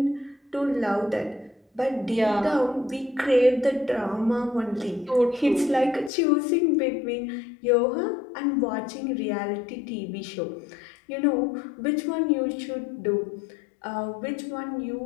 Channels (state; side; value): drops out; right; at 6.1 s